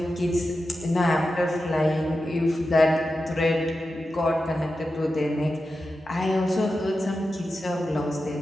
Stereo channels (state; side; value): normal; both; correlation 0.91